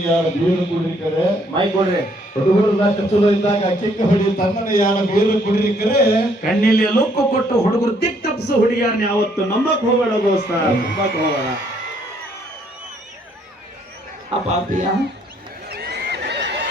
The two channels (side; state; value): both; normal; correlation 0.67